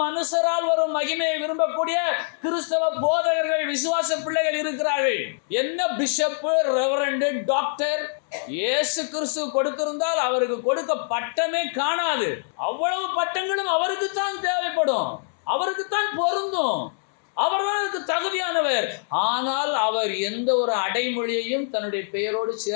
மனுஷரால் வரும் மகிமையை விரும்பக்கூடிய கிறிஸ்தவ போதகர்கள், விசுவாச பிள்ளைகள் இருக்கிறார்கள். என்ன பிஷப்பு, ரெவரண்டு, டாக்டர் இயேசு கிறிஸ்து கொடுத்திருந்தால் அவருக்கு கொடுக்க பட்டமே காணாது. அவ்வளவு பட்டங்களும் அவருக்கு தான் தேவைப்படும், அவருக்கு தான் பொருந்தும், அவர்தான் அதுக்கு தகுதியானவர். ஆனால் அவர் எந்த ஒரு அடைமொழியையும் தன்னுடைய பெயரோடு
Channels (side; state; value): right; silent; digital silence